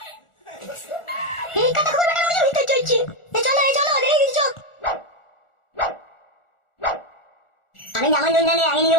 এই কথা খবর বেটার মধ্যে ভিতর চলছি। চলো, দেরি কিছু চল। আমি যেমন জন জানি আগে নিয়ে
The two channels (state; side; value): late; right; 1.4 ms